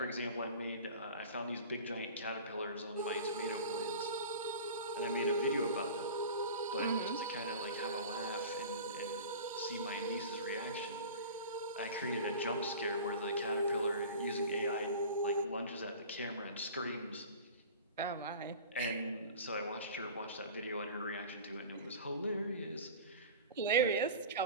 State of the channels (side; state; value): both; inverted; correlation -0.37